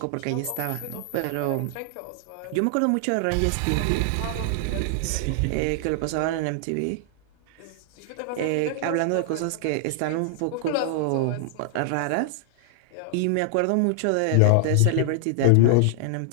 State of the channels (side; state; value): both; different; correlation 0.00